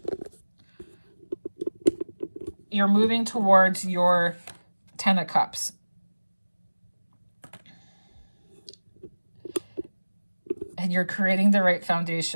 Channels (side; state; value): both; inverted; correlation -1.00